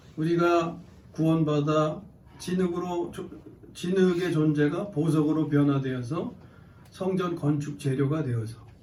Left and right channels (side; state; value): both; identical; correlation 1.00